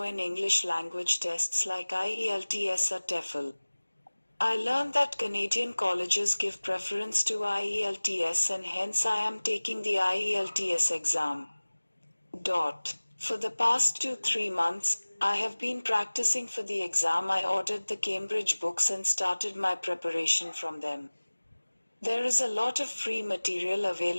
in English language tests like IELTS or TOEFL. I learned that Canadian colleges give preference to IELTS and hence I am taking the IELTS exam. For the past 2-3 months, I have been practicing for the exam. I ordered the Cambridge books and started my preparation from them. There is a lot of free material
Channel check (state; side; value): inverted; both; correlation -1.00